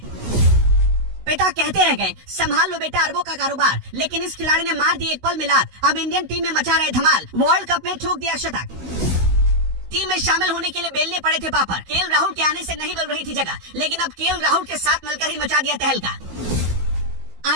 पिता कहते रह गए संभाल लो बेटा अरबों का कारोबार, लेकिन इस खिलाड़ी ने मार दी एक पल में लात। अब इंडियन टीम में मचा रहे धमाल, वर्ल्ड कप में ठोक दिया शतक। टीम में शामिल होने के लिए बेलने पड़े थे पापड़। केएल राहुल के आने से नहीं मिल रही थी जगह, लेकिन अब केएल राहुल के साथ मिलकर ही मचा दिया तहलका।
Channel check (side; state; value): left; late; 16 ms